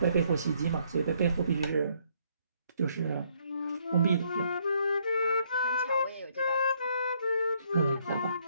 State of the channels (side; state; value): both; inverted; correlation -0.69